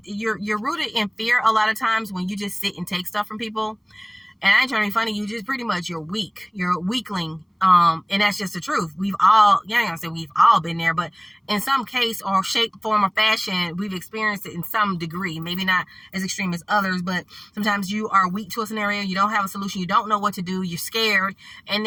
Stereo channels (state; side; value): identical; both; correlation 1.00